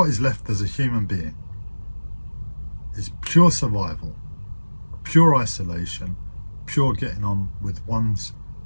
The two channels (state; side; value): inverted; both; correlation -1.00